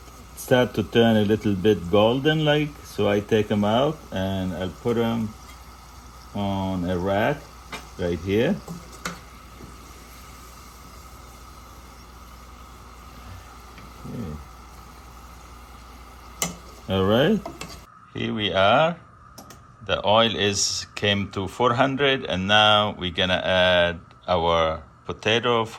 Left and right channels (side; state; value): both; identical; correlation 1.00